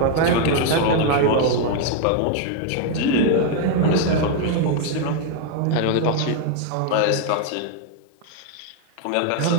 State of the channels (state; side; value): different; both; correlation 0.00